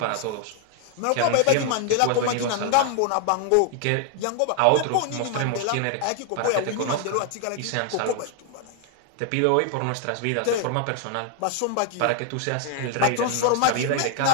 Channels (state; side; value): different; both; correlation 0.00